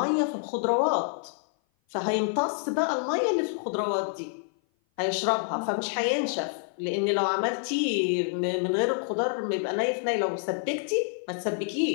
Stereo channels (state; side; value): silent; right; 56 dB below the other